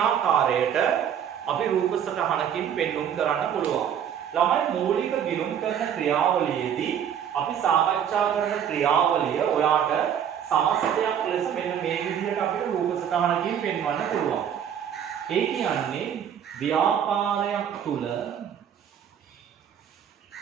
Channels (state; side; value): quieter; left; 8.9 dB